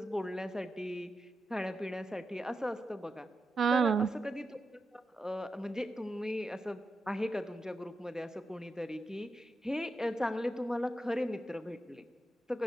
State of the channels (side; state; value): both; normal; correlation 0.88